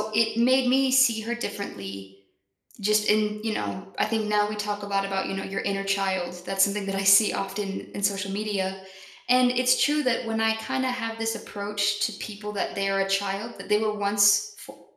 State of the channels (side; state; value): both; identical; correlation 1.00